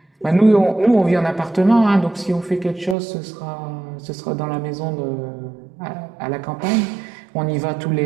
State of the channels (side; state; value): left; drops out; at 3.0 s